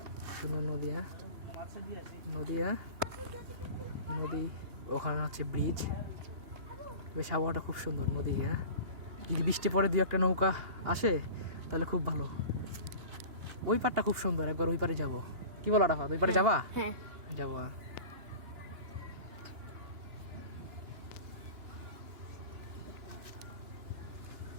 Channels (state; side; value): late; left; 2.8 ms